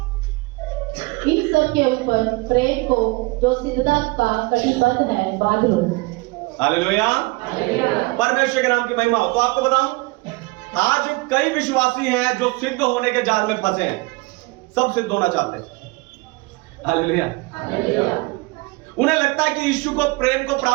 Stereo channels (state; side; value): quieter; left; 24.6 dB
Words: इन सब के ऊपर प्रेम को जो सिद्धता का कटिबद्ध है बांध लो। हालेलुया। परमेश्वर के नाम की महिमा हो। तो आपको बताऊं, आज कई विश्वासी हैं जो सिद्ध होने के जाल में फंसे हैं, सब सिद्ध होना चाहते हैं। हालेलुया। उन्हें लगता है कि यीशु को प्रेम को